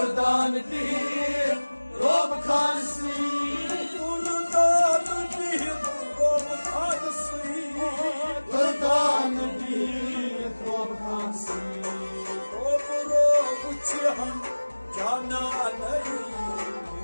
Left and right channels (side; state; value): both; inverted; correlation -1.00